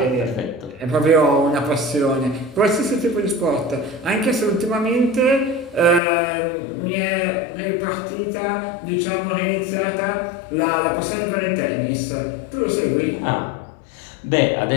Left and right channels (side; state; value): right; drops out; at 6.0 s